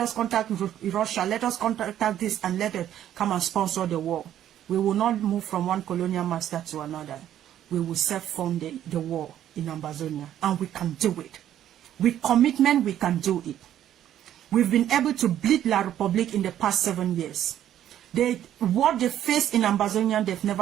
contact Russia, let us contact this, and let it come and sponsor the war. We will not move from one colonial master to another. We will self-fund the war in Ambazonia, and we can do it. With commitment, we can do it. We've been able to bleed La Republique in the past 7 years. What they faced in Ambazonia, they've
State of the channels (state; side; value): quieter; left; 11.3 dB